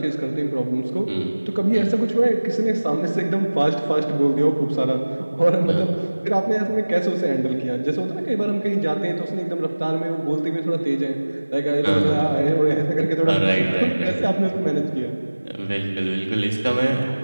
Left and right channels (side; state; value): both; inverted; correlation -1.00